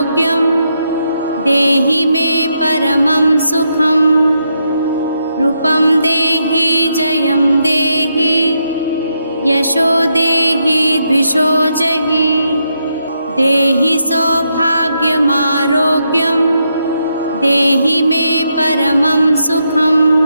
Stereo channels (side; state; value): both; inverted; correlation -0.81